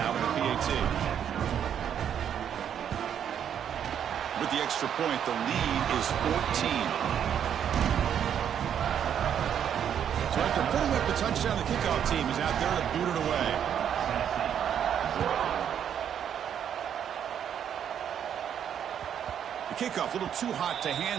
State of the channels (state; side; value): quieter; left; 8.9 dB